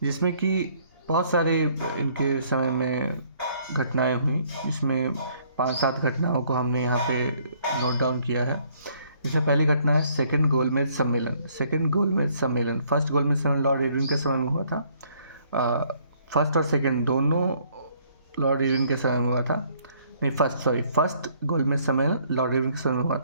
जिसमें कि बहुत सारे इनके समय में घटनाएं हुई, जिसमें 5-7 घटनाओं को हमने यहाँ पे नोट डाउन किया है। इसमें पहली घटना है सेकंड गोलमेज सम्मेलन। फर्स्ट गोलमेज सम्मेलन लॉर्ड इरविन के समय में हुआ था। फर्स्ट और सेकंड दोनों लॉर्ड इरविन के समय में हुआ था। नहीं, फर्स्ट गोलमेज सम्मेलन लॉर्ड इरविन के समय में हुआ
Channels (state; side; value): inverted; both; correlation -0.64